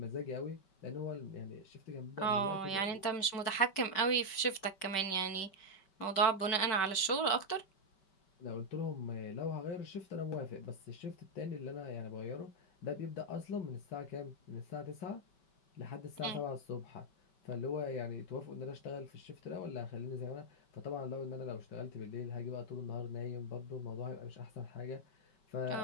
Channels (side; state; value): right; late; 5.2 ms